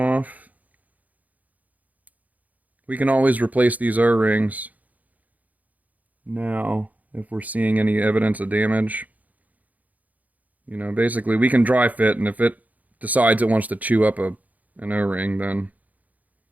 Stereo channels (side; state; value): left; late; 0.078 ms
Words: We can always replace these O-rings now if we're seeing any evidence of damage. You know, basically we can dry fit, and if it decides it wants to chew up an O-ring, then